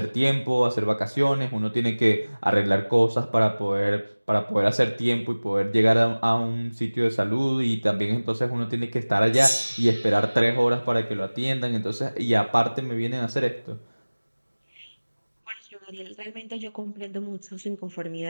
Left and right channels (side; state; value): both; inverted; correlation -1.00